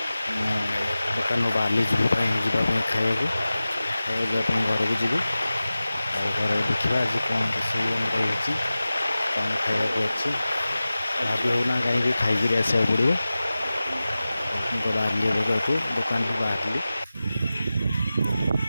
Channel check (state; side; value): inverted; both; correlation -0.96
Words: ଦୋକାନରୁ ବାହାରିଲି ଯିବା ପାଇଁ ଖାଇବାକୁ ଯିବା ପାଇଁ ଘରକୁ ଯିବି। ଆଉ ଘରେ ଦେଖିବା ଆଜି କ'ଣ ରୋଷେଇ ଆମର ହେଇଛି, କ'ଣ ଖାଇବାକୁ ଅଛି ଭାବି ହେଉନା, କାହିଁକି ଖାଇକିରି ଆସିବାକୁ ପଡ଼ିବ। ମୁଁ ତ ବାହାରିଲି ଏବେ ଯେହେତୁ ଦୋକାନରୁ ବାହାରିଲି।